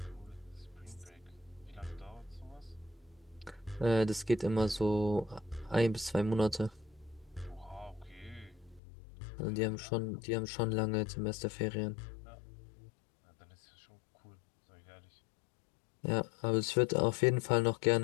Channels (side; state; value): right; drops out; at 8.8 s